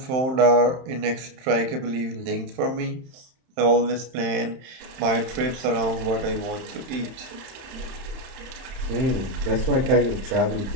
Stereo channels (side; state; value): left; late; 31 ms